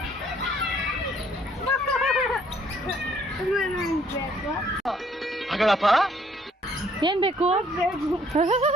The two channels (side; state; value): both; normal; correlation 0.63